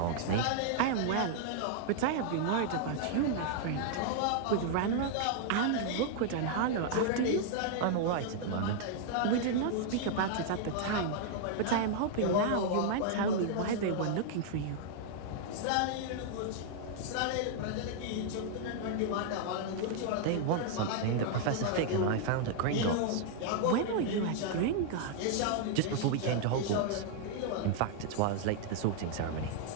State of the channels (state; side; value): different; both; correlation 0.00